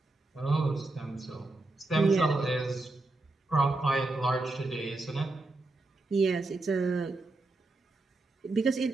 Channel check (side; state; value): left; quieter; 3.0 dB